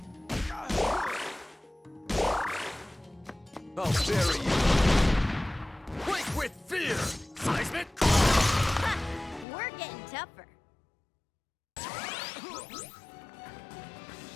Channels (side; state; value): right; drops out; at 9.5 s